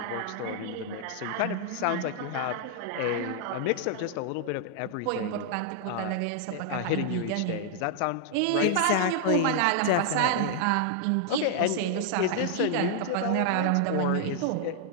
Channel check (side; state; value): both; different; correlation 0.00